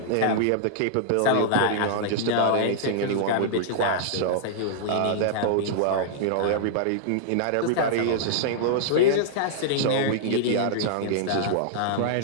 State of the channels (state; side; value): different; both; correlation -0.01